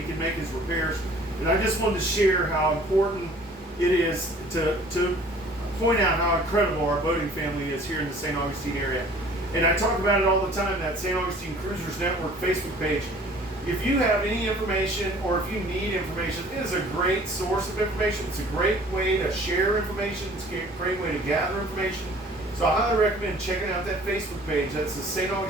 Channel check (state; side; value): normal; both; correlation 0.51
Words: can make his repairs. And I just wanted to share how important it is to point out how incredible our boating family is here in the St. Augustine area. And I talk about it all the time, that St. Augustine Cruisers Network Facebook page. If you have any information or if you need information, it is a great source of information. It's a great way to share information. It's a great way to gather information. So I highly recommend checking out that Facebook page. That's the St.